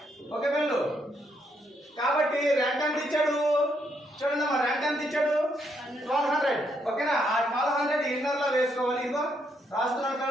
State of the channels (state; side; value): normal; both; correlation 0.75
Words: ఓకే పిల్లలు, కాబట్టి రెంట్ ఎంత ఇచ్చాడు చూడండి అమ్మా, రెంట్ ఎంత ఇచ్చాడు? 1200. ఓకేనా? ఆ 1200 ఇన్నర్ లో వేసుకోవాలి. ఇదిగో రాస్తున్నాను